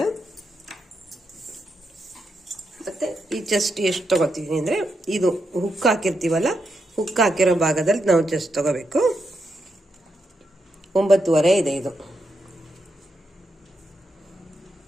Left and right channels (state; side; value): normal; both; correlation 0.84